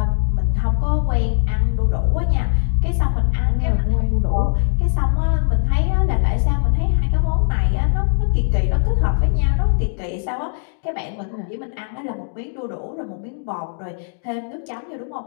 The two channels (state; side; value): silent; right; digital silence